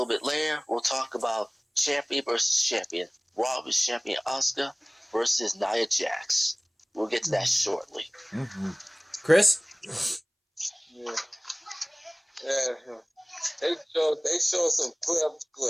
bit later, we'll talk about champion versus champion. Raw versus champion Asuka versus Nia Jax. We'll get to that shortly. Mm-hmm. Chris? Yeah. They show some clips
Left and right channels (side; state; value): both; identical; correlation 1.00